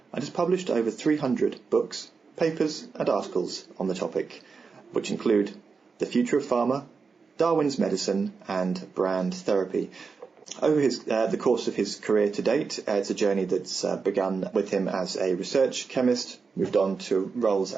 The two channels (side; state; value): left; quieter; 5.0 dB